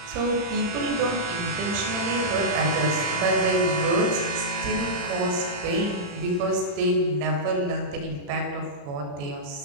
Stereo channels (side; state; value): left; late; 34 ms